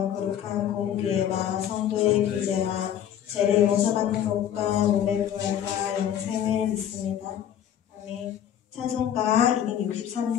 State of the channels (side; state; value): right; quieter; 10.0 dB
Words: 거룩한 공교회와 성도의 교제와 죄를 용서받는 것과 몸의 부활과 영생을 믿습니다. 아멘. 찬송가